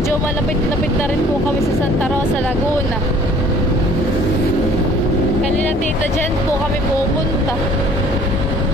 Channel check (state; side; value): normal; both; correlation 0.53